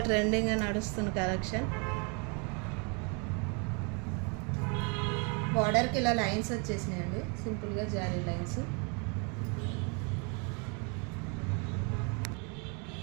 ట్రెండింగ్గా నడుస్తున్న కలెక్షన్. బార్డర్కి ఇలా లైన్స్ వచ్చేసినాయండి, సింపుల్గా జారీ లైన్స్.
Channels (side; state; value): left; quieter; 34.6 dB